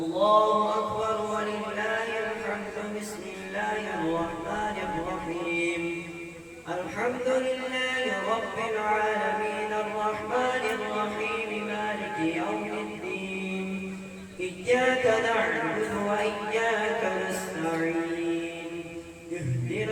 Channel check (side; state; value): both; identical; correlation 1.00